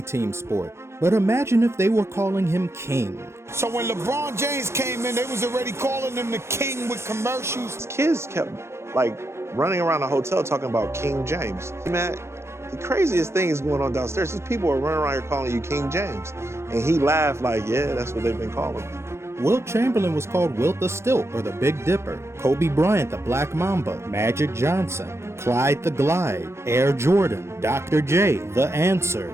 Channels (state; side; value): late; left; 0.13 ms